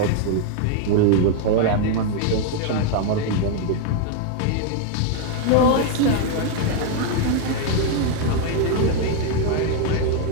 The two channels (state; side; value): different; both; correlation 0.01